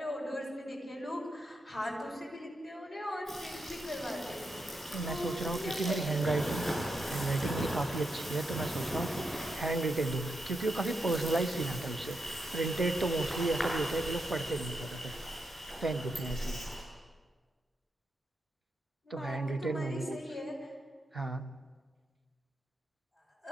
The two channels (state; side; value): normal; both; correlation 0.84